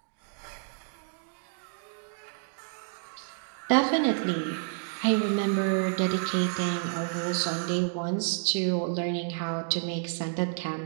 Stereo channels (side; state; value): left; silent; 58 dB below the other